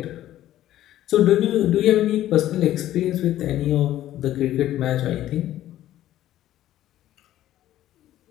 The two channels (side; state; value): right; quieter; 13.3 dB